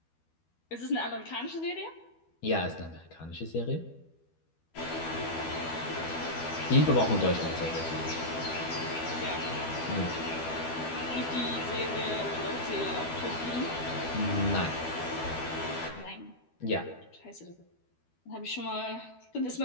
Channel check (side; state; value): right; late; 12 ms